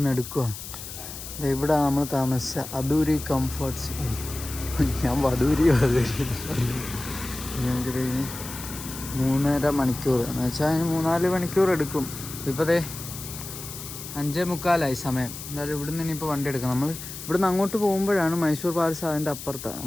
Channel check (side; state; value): left; noise; hiss, 11 dB below the sound